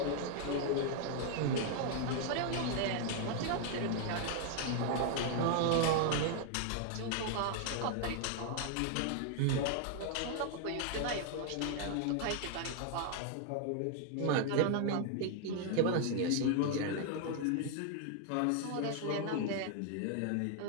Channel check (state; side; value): different; both; correlation 0.00